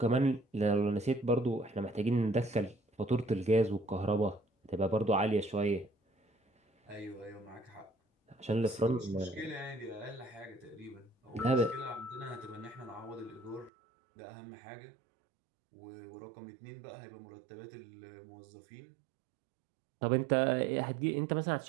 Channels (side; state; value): left; drops out; at 13.7 s